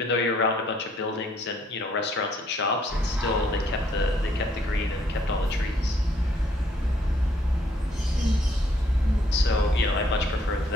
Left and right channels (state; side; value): normal; both; correlation 0.67